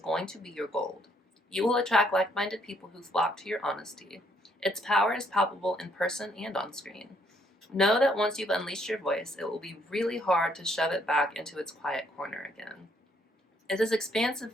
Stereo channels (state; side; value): normal; both; correlation 0.69